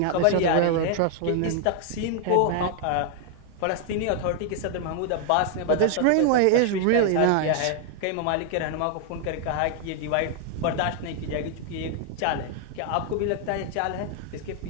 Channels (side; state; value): both; different; correlation 0.00